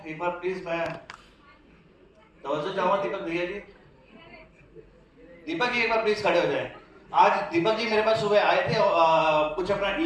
एक बार प्लीज मैं तवज्जो चाहूँगा दीपक भैया जी। दीपक जी एक बार प्लीज खड़े हो जाएं। आज दीपक जी मेरे पास सुबह आए थे, कुछ अपना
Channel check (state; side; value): identical; both; correlation 1.00